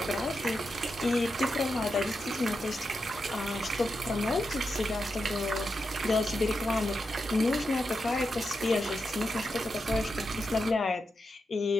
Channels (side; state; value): both; normal; correlation 0.87